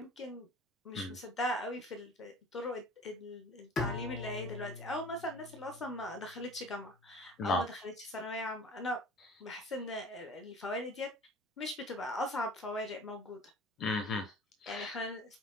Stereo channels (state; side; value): normal; both; correlation 0.44